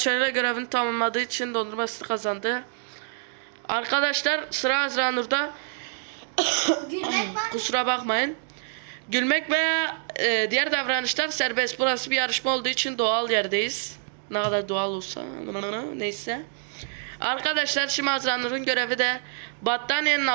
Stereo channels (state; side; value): silent; left; digital silence